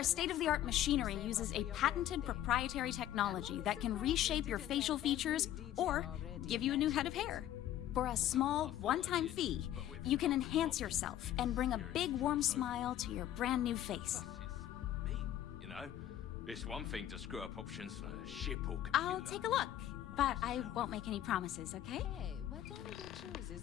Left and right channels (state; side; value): quieter; right; 12.2 dB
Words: state-of-the-art machinery uses a patented proprietary technology that can reshape your facial features or give you a new head of hair. For a small, one-time fee, you can enhance yourself and bring a big, warm smile to your brand new face. Me, you know? It's one thing to screw up options on a ship or computer. I'll take a look, but I won't make any promises, okay? Hey, whatever you choose